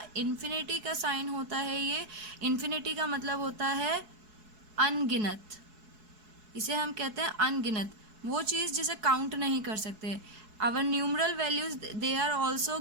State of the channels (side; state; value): left; late; 4.7 ms